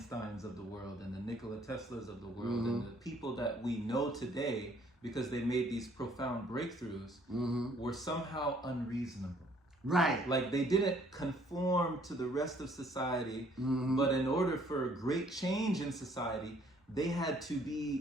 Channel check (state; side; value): normal; both; correlation 0.62